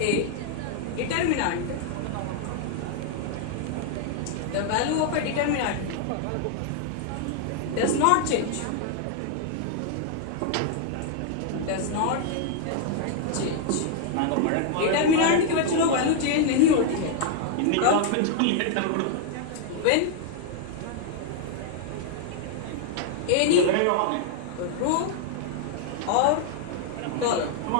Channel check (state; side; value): different; both; correlation 0.00